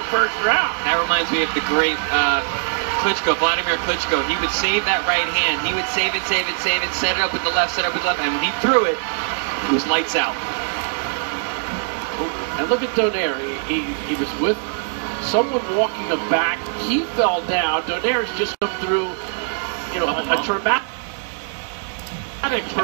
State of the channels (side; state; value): left; silent; digital silence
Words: first round. That reminds me of the great Klitschko, Vladimir Klitschko. He would save that right hand. He would save it, set it up with the left, and when he threw it, it was lights out. And look at Donaire. He was with someone walking him back. He fell down. Donaire's just come through, a traumatic